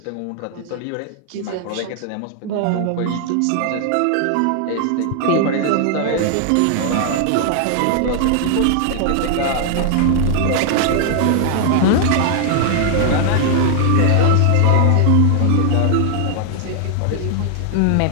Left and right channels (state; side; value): different; both; correlation 0.00